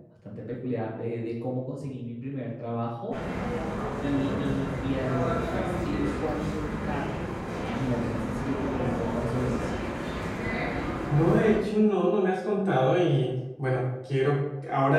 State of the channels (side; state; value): both; identical; correlation 1.00